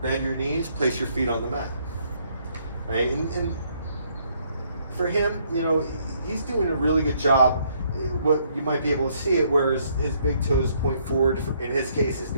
Bend your knees, place your feet on the mat. Right? And for him, you know, he's doing a really good job. What you might be able to see it where his big toes point forward. In his case, his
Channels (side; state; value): both; inverted; correlation -0.69